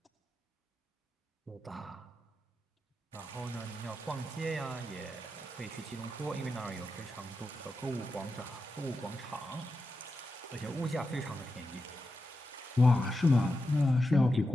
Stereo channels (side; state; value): both; normal; correlation 0.89